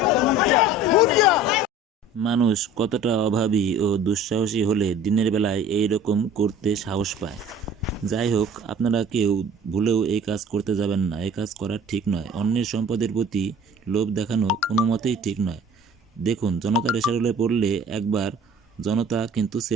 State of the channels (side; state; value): both; normal; correlation 0.46